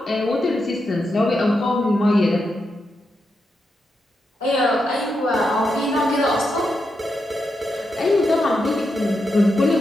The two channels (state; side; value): normal; both; correlation 0.85